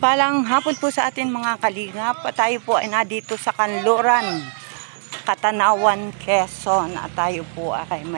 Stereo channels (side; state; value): left; silent; digital silence